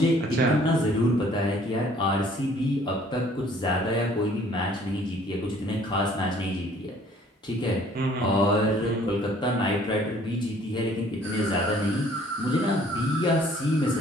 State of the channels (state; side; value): normal; both; correlation 0.57